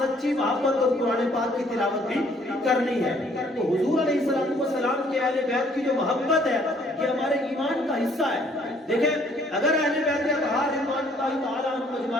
سچی محبت اور قرآن پاک کی تلاوت بھی کرنی ہے۔ تو حضور علیہ السلام کے اہل بیت کی جو محبت ہے یہ ہمارے ایمان کا حصہ ہے۔ دیکھیں اگر اہل بیت اطہار رضوان اللہ تعالیٰ عنہم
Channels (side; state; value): both; normal; correlation 0.62